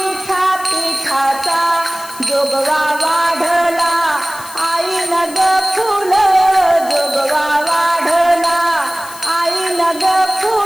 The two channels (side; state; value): left; noise; hiss, 16 dB below the sound